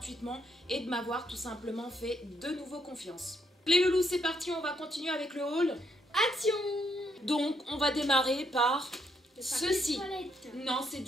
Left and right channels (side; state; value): both; normal; correlation 0.75